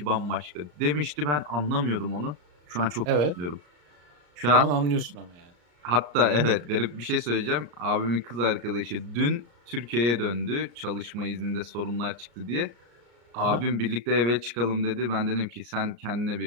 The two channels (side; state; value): left; late; 34 ms